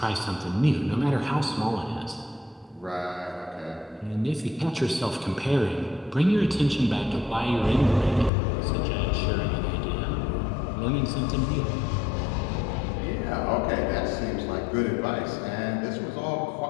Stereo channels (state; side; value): drops out; right; at 8.3 s